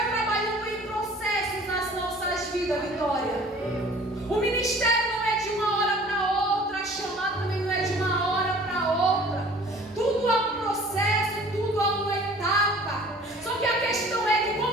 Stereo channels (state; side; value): normal; both; correlation 0.49